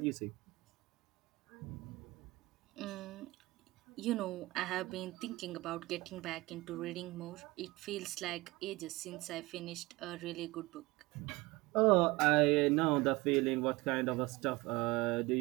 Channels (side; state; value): left; quieter; 21.6 dB